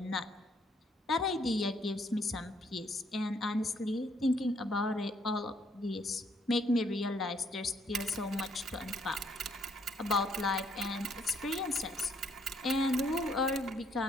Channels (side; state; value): both; normal; correlation 0.68